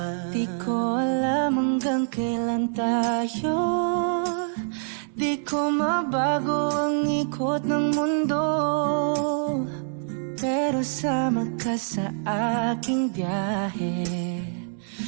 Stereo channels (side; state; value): left; silent; digital silence